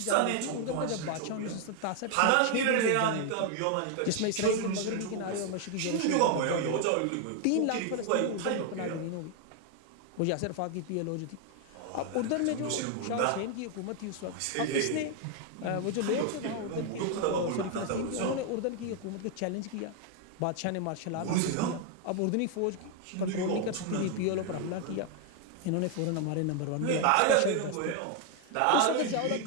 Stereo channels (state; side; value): different; both; correlation 0.00